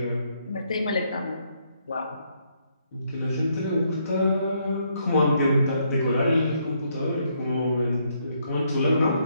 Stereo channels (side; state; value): both; inverted; correlation -0.73